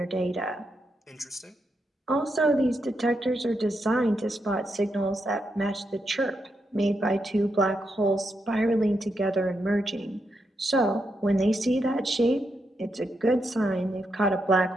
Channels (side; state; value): both; normal; correlation 0.83